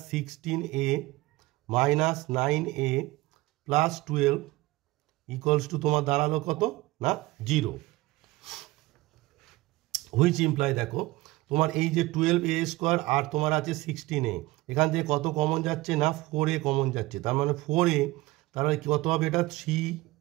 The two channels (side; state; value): left; quieter; 19.9 dB